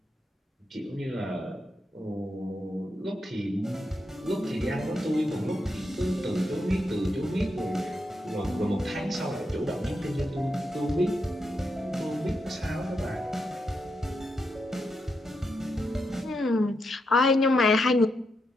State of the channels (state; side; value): normal; both; correlation 0.83